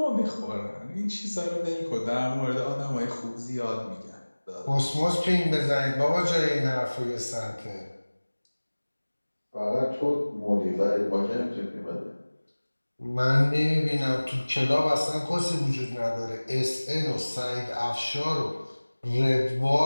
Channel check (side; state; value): both; inverted; correlation -1.00